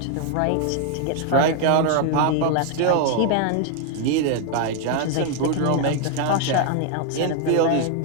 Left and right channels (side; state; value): both; different; correlation 0.00